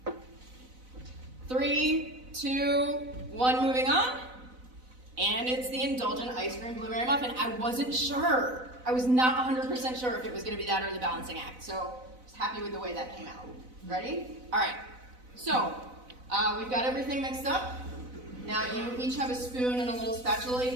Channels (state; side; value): late; left; 4.0 ms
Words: 3, 2, 1, moving on. And it's the indulgent ice cream blueberry muffin. I wasn't sure. I was not 100% sure if it was going to be that or the balancing act. So I was happy with the way that came out. Ready? All right. So we've got everything mixed up. Now you each have a spoon and a little